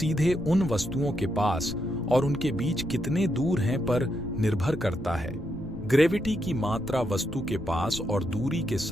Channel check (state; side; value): noise; left; rumble, 12 dB below the sound